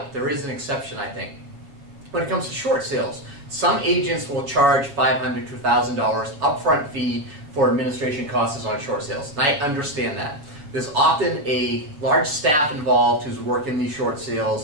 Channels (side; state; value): left; late; 7.0 ms